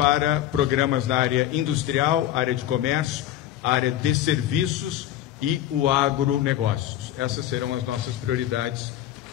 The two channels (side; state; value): right; quieter; 12.6 dB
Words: programas na área industrial, área de comércio, área de serviços e o agronegócios. Essas serão as nossas prioridades